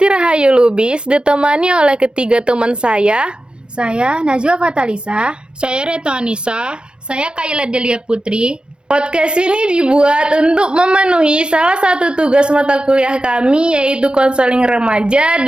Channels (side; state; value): left; late; 0.052 ms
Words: Rahayu Lubis ditemani oleh ketiga teman saya. Saya Najwa Fatalisa. Saya Reto Anissa. Saya Kayla Delia Putri. Podcast ini dibuat untuk memenuhi salah satu tugas mata kuliah kami, yaitu konseling remaja